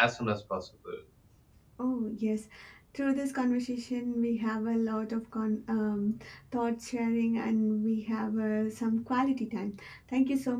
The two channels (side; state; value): both; identical; correlation 1.00